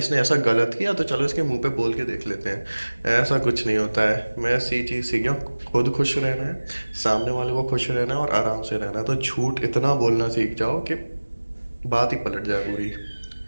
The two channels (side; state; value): both; inverted; correlation -1.00